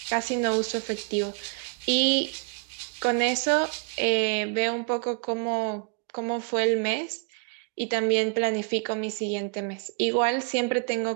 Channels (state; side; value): quieter; left; 39.3 dB